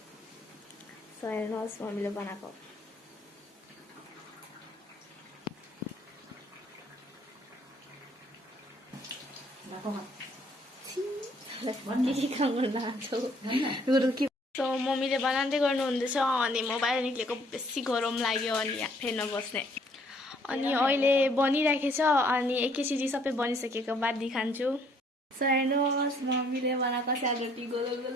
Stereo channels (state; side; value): normal; both; correlation 0.63